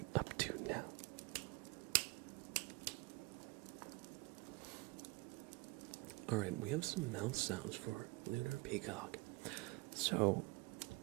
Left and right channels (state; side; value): quieter; left; 24.7 dB